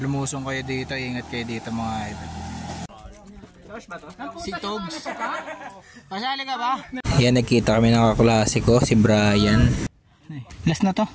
lumusong kayo dito, ingat kayo dito mga idol. Si Togs. Pasali ka ba? Yan, nagkita kami ng kaklase ko, si Brian. Last na to.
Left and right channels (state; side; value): identical; both; correlation 1.00